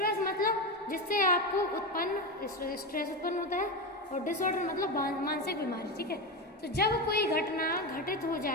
मतलब जिससे आपको स्ट्रेस उत्पन्न होता है, और डिसऑर्डर मतलब मानसिक बीमारी, ठीक है। तो जब कोई घटना घटित हो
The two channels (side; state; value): both; normal; correlation 0.16